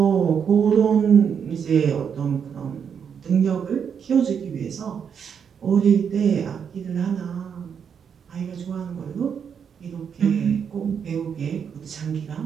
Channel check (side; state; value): left; quieter; 7.3 dB